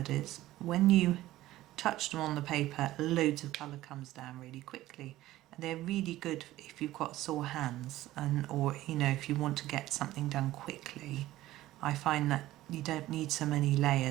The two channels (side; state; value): left; quieter; 15.7 dB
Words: is. When you touch them on the paper, loads of colour comes down really quickly. And they're really good if you've got sore hands, or you know, if you want to get something done quickly. I find that you don't need so many